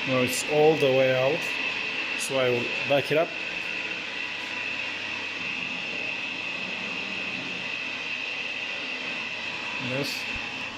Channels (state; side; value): identical; both; correlation 1.00